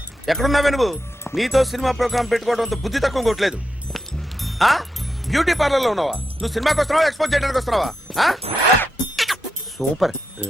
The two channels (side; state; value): both; normal; correlation 0.86